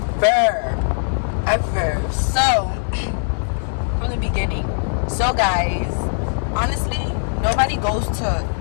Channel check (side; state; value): right; silent; 55 dB below the other